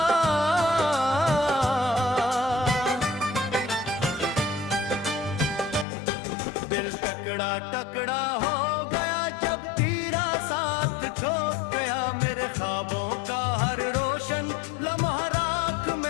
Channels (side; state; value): right; drops out; at 5.9 s